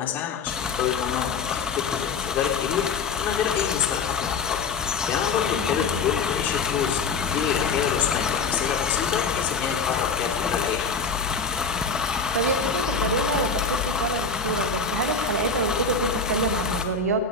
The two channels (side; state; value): right; quieter; 4.6 dB